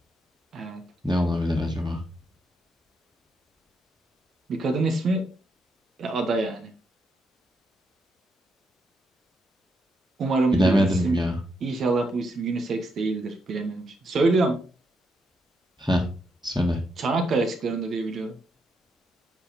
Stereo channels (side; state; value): both; normal; correlation 0.80